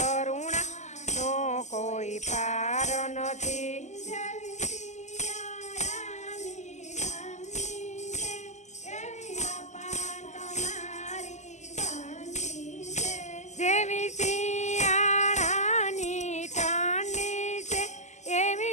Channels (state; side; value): late; right; 0.34 ms